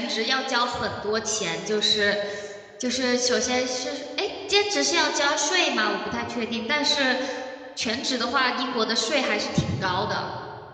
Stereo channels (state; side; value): identical; both; correlation 1.00